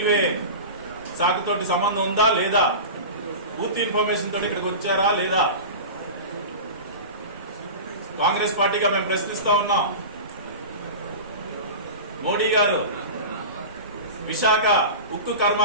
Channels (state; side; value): inverted; both; correlation -0.30